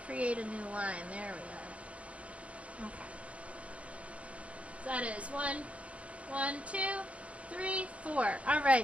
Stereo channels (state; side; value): late; left; 0.063 ms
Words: create a new line. There we are. Okay. So that is 1, 2, 3, 4.